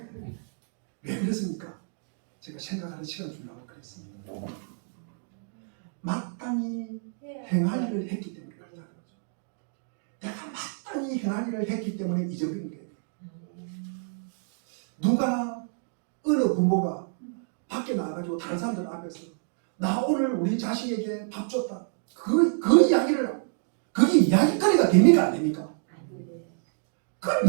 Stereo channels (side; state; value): left; silent; 59 dB below the other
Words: 왜 그렇습니까? 제가 생각하는 시간 주려고 그랬습니다. 마땅히 행할 일을 했기 때문에 그렇다는 거죠. 내가 마땅히 행할 일을 했기 때문에 잊어버린 거예요. 누가 어느 부모가 밖에 나가가지고 다른 사람들 앞에서 나 오늘 우리 자식에게 밥 줬다. 그 이야기를 그게 이야기거리가 됩니까 안 됩니까? 그건